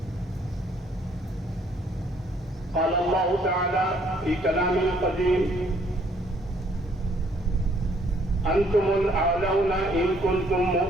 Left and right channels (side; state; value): both; normal; correlation 0.65